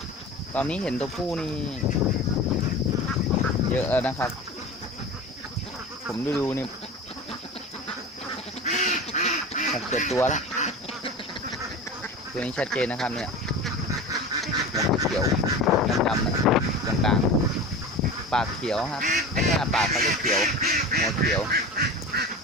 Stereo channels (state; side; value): normal; both; correlation 0.32